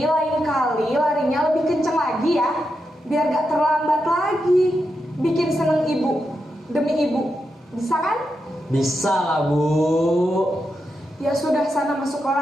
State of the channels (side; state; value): both; normal; correlation 0.86